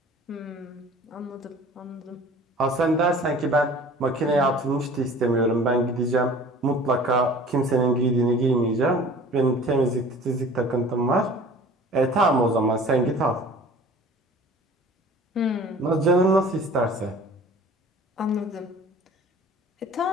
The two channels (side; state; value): both; normal; correlation 0.45